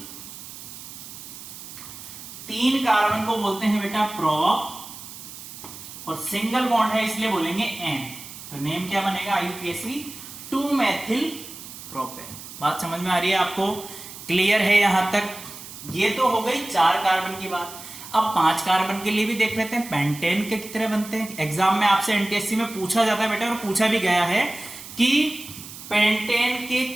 3 कार्बन को बोलते हैं बेटा प्रोप, और सिंगल बॉन्ड है इसलिए बोलेंगे एन। तो नेम क्या बनेगा, आईयूपीएसी 2 मैथिल प्रोपेन। बात समझ में आ रही है आपको, क्लियर है यहां तक। ये तो हो गई 4 कार्बन की बात। अब 5 कार्बन के लिए भी देख लेते हैं पेंटेन के कितने बनते हैं। एग्जाम में आपसे एनटीएससी में पूछा जाता है बेटा, और पूछा भी गया है कि पेंटेन के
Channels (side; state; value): right; noise; hiss, 14 dB below the sound